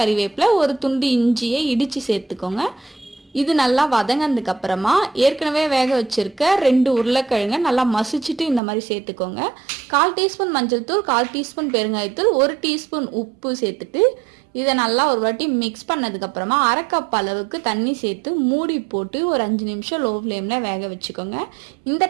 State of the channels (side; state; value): left; drops out; at 8.6 s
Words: கறிவேப்பிலை, 1 துண்டு இஞ்சியை இடித்து சேர்த்துக்கோங்க. இது நல்லா வதங்கினதுக்கு அப்புறமா ஏற்கனவே வேக வச்சிருக்க 2 உருளைக்கிழங்கை நல்லா மசிச்சுட்டு இந்த மாதிரி சேர்த்துக்கோங்க. 1/4 டீஸ்பூன் மஞ்சள் தூள், 1/4 டீஸ்பூன் பெருங்காயத்தூள், 1 டீஸ்பூன் உப்பு சேர்த்துட்டு இதை நல்லா ஒரு வாட்டி மிக்ஸ் பண்ணதுக்கு அப்புறமா 1/2 கப் அளவுக்கு தண்ணி சேர்த்து மூடி போட்டு ஒரு 5 நிமிஷம் லோ ஃப்ளேமில் வேக வச்சுக்கோங்க. இந்த